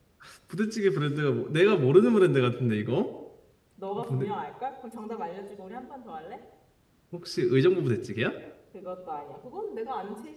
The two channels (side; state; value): both; identical; correlation 1.00